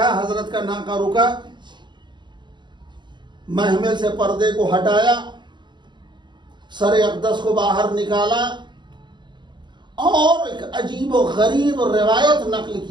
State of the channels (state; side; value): late; left; 0.22 ms